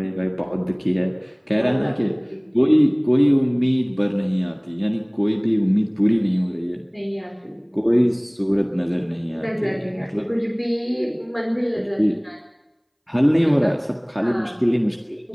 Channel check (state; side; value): identical; both; correlation 1.00